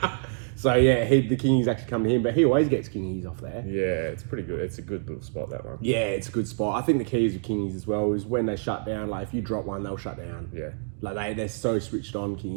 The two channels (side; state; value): left; silent; digital silence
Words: So yeah, the kingies actually come to him, but he always gets kingies off there. Yeah, it's pretty good. It's a good little spot, that one. Yeah, it's a good spot. I think the key is with kingies as well is when they shut down. Like if you drop one, they'll shut down. Yeah. Like they're so switched on